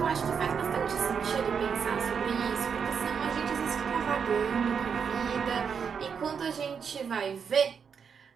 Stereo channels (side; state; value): left; quieter; 6.6 dB